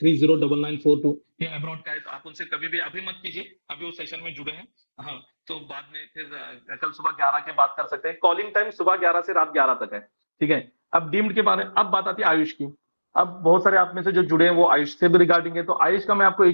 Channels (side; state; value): both; inverted; correlation -1.00